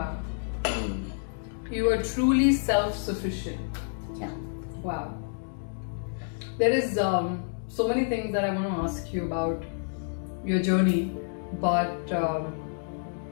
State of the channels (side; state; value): right; silent; digital silence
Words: You are truly self-sufficient. Yeah. Wow. There is so many things that I want to ask you about your journey, but